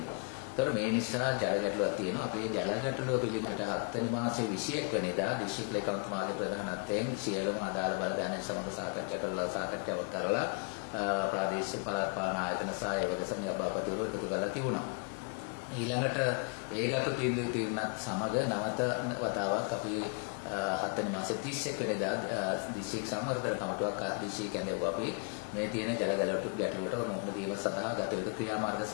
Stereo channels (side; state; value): right; quieter; 38.3 dB